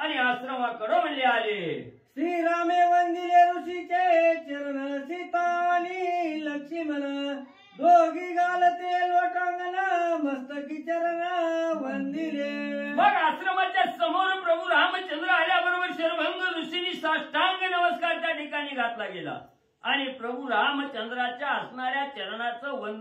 आश्रमाकडे म्हणले आले. श्रीरामे वंदिले ऋषीचे चरण सीता आणि लक्ष्मण दोघी घालते लोटांगण मस्तकी चरण वंदिले. मग आश्रमाच्या समोर प्रभू रामचंद्र आल्याबरोबर शर्वंग ऋषींनी साष्टांग नमस्कार त्या ठिकाणी घातला गेला आणि प्रभू रामचंद्राच्या असणाऱ्या चरणाचं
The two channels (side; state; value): both; identical; correlation 1.00